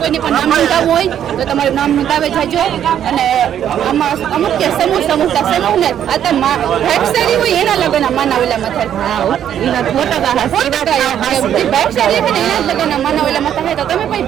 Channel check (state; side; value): quieter; left; 9.9 dB